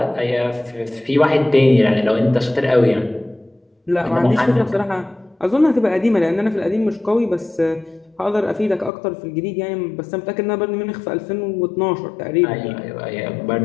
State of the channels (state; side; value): drops out; right; at 8.9 s